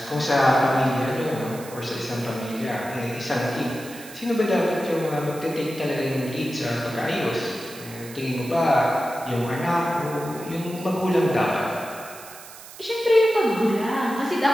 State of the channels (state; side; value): noise; right; hiss, 16 dB below the sound